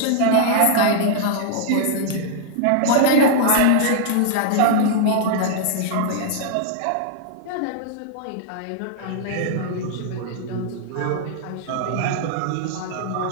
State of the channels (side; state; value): both; different; correlation -0.01